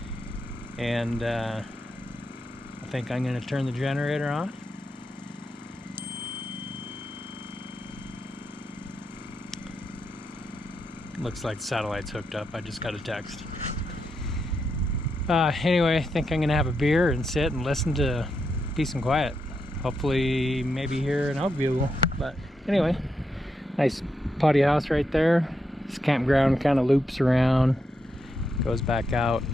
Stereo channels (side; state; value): both; normal; correlation 0.83